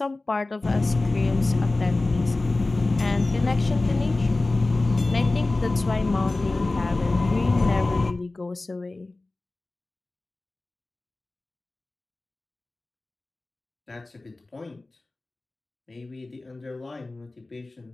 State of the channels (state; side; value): quieter; right; 3.1 dB